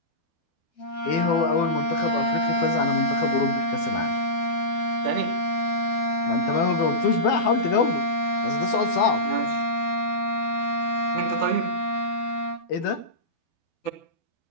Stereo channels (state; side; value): late; right; 12 ms